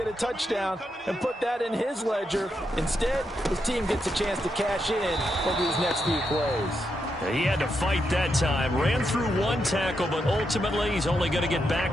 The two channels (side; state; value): both; normal; correlation 0.83